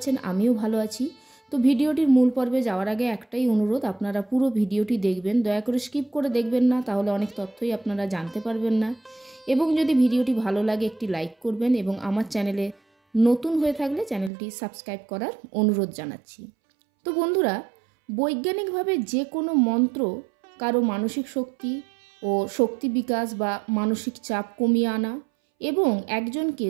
আমিও ভালো আছি। তো ভিডিওটির মূল পর্বে যাওয়ার আগে একটাই অনুরোধ, আপনারা পুরো ভিডিওটি দেখবেন, দয়া করে স্কিপ করে দেখবেন না, তাহলে অনেক তথ্যই আপনারা জানতে পারবেন না। এবং যদি ভিডিওটি ভালো লাগে একটি লাইক করবেন এবং আমার চ্যানেলে নতুন হয়ে থাকলে চ্যানেলটি সাবস্ক্রাইব করার অনুরোধ জানাচ্ছি। তো বন্ধুরা, বৈজ্ঞানিকভাবে যে কোনো মন্ত্র কারো মানসিক শক্তি ও শক্তি বিকাশ বা মানসিক চাপ কমিয়ে আনা এবং একজনকে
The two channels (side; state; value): left; drops out; at 14.3 s